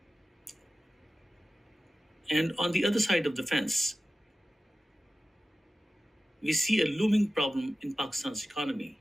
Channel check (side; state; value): both; normal; correlation 0.94